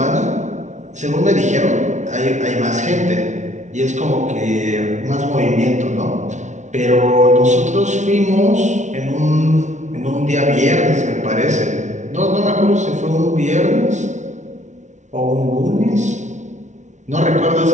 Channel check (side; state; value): left; late; 0.35 ms